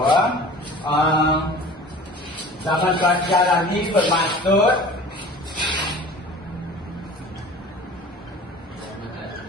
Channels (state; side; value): normal; both; correlation 0.43